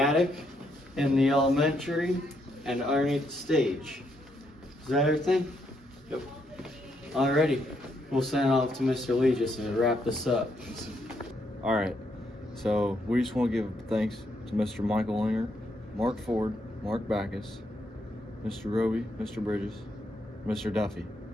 in the elementary and underneath the stage. Is that everything? Yep. Alrighty. We'll send it off to Mr. Lee just to wrap this up. All right. So we just want to give thanks to Mr. Michael Linger, Mark Ford, Mark Backus, Mr. Roby, Mr. Bridges, Mr. Duffy,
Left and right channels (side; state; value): both; normal; correlation 0.76